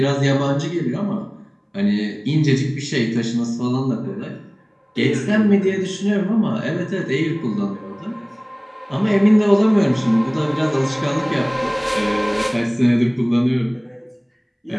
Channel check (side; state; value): both; identical; correlation 1.00